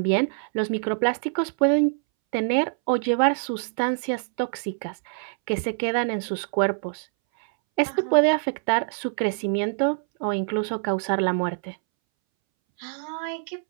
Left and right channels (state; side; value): silent; left; 62 dB below the other